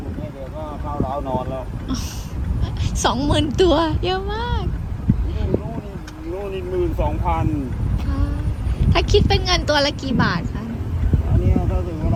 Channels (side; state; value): both; identical; correlation 1.00